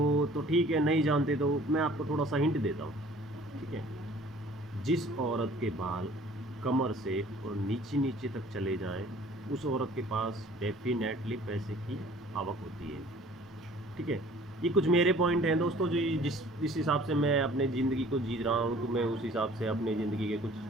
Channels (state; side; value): normal; both; correlation 0.51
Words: तो ठीक है, नहीं जानते तो मैं आपको थोड़ा सा हिंट देता हूँ। ठीक है, जिस औरत के बाल कमर से और नीचे नीचे तक चले जाएं, उस औरत के पास डेफिनेटली पैसे की आवक होती है। ठीक है, ये कुछ मेरे पॉइंट हैं दोस्तों, जो जिस हिसाब से मैं अपने ज़िंदगी को जी रहा हूँ, तो मैं उस हिसाब से अपने ज़िंदगी के